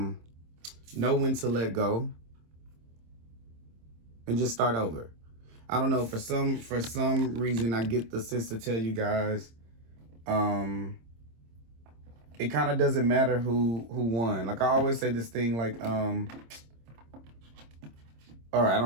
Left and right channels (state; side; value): late; left; 26 ms